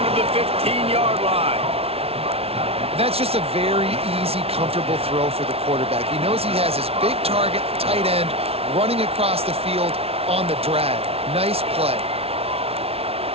to the 15-yard line. That's just a very easy, comfortable throw for the quarterback. He knows he has his big target, tight end, running across the field on the drag. Nice play.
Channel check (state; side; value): late; left; 0.29 ms